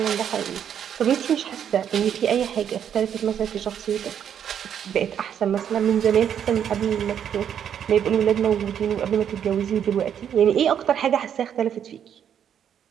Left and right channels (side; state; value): left; quieter; 8.9 dB